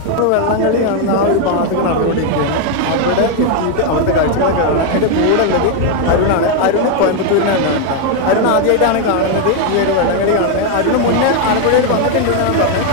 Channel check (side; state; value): both; different; correlation 0.01